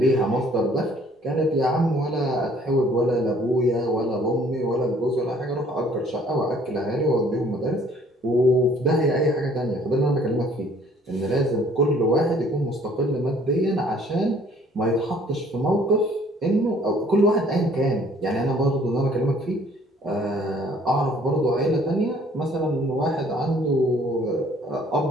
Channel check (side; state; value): both; normal; correlation 0.58